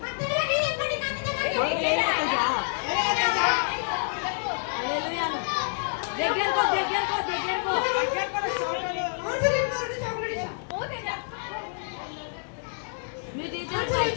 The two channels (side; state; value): right; silent; digital silence